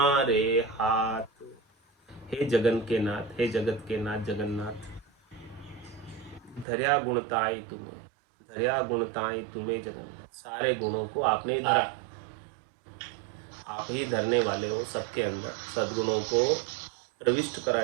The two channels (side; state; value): left; drops out; at 6.7 s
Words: हाथ। हे जगन के नाथ, हे जगत के नाथ जगन्नाथ, धर्या गुणताई तुम्हें, धर्या गुणताई तुम्हें जगन्नाथ, सारे गुणों को आपने ही धरा। आप ही धरने वाले हो, सबके अंदर सद्गुणों को प्रविष्ट